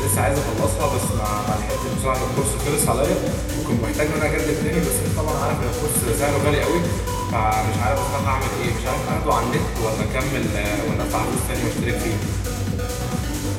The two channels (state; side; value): identical; both; correlation 1.00